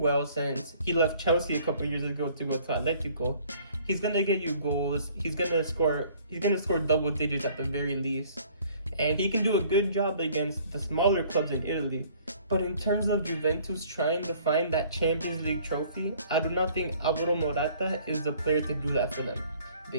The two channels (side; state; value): both; inverted; correlation -0.56